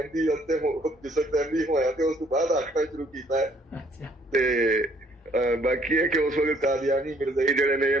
ਅਤੇ ਜਿਸ ਵਕਤ ਅਹਿਮਦੀ ਹੋਇਆ ਤੇ ਉਸ ਤੋਂ ਬਾਅਦ ਆਖਣਾ ਸ਼ੁਰੂ ਕੀਤਾ ਹੈ। ਤੇ बाकी है कि उस वक्त कादियानी मिर्जाई जड़े ने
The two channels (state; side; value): normal; both; correlation 0.63